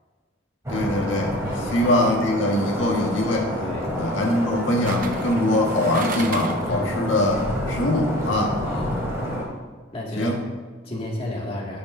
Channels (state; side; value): normal; both; correlation 0.40